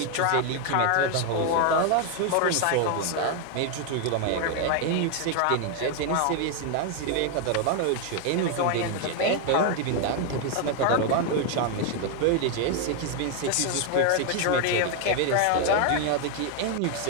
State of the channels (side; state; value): both; different; correlation 0.01